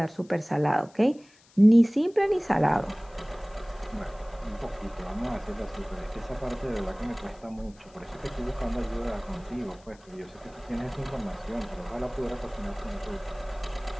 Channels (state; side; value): noise; left; hiss, 28 dB below the sound